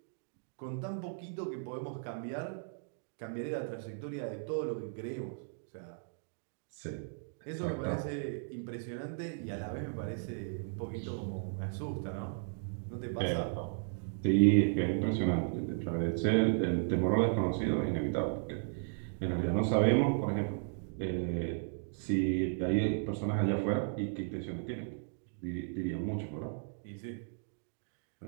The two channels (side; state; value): left; silent; digital silence